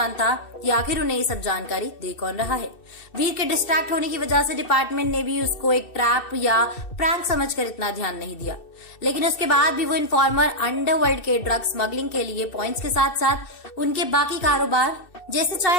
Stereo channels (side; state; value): right; late; 2.6 ms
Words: कि आखिर उन्हें ये सब जानकारी दे कौन रहा है। वीर के डिस्ट्रैक्ट होने की वजह से डिपार्टमेंट ने भी उसको एक ट्रैप या प्रैंक समझकर इतना ध्यान नहीं दिया, लेकिन उसके बाद भी वो इन्फॉर्मर अंडरवर्ल्ड के ड्रग स्मगलिंग के लिए पॉइंट्स के साथ साथ उनके बाकी कारोबार जैसे